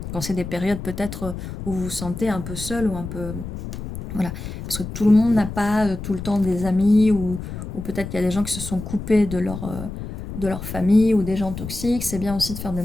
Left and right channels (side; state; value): left; noise; rumble, 8 dB below the sound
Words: quand c'est des périodes peut-être où vous vous sentez un peu seul ou un peu... Voilà, parce que tout le monde n'a pas tout le temps des amis, ou peut-être qu'il y a des gens qui se sont coupés de leur famille, ou des gens toxiques. C'est bien aussi de faire le